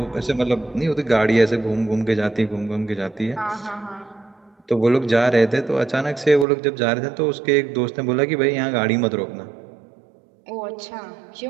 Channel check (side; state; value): left; drops out; at 6.5 s